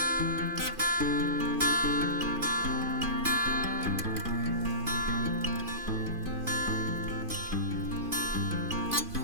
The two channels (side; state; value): left; late; 2.5 ms